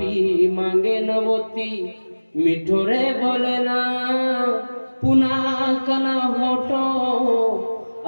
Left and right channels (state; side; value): inverted; both; correlation -1.00